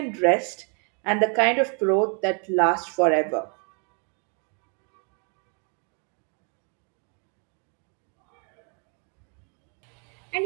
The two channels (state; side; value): quieter; left; 38.3 dB